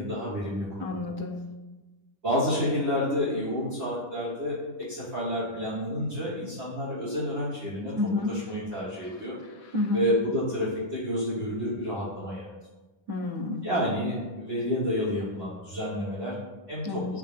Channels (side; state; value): left; late; 10 ms